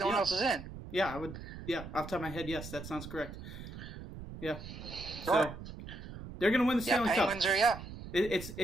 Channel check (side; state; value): right; noise; rumble, 11 dB below the sound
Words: one else is in. Yeah, I would. Yeah, off the top of my head, yes, that sounds correct. Yeah. So Sure. they're gonna win the Stanley Cup. Penguins are